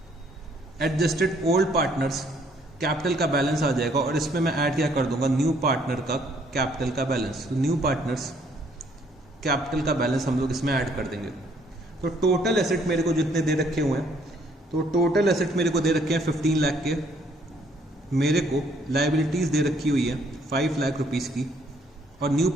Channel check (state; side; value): normal; both; correlation 0.65